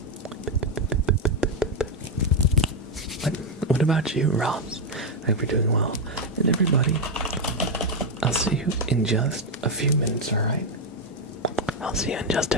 What about you, Ross? I hope you're doing well. And everybody, I'll see you in just a few minutes, alright? I'll see you in just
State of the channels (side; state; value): both; normal; correlation 0.04